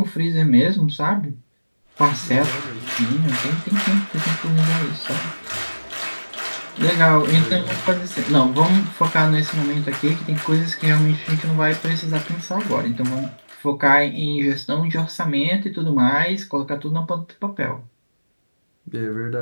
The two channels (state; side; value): inverted; both; correlation -1.00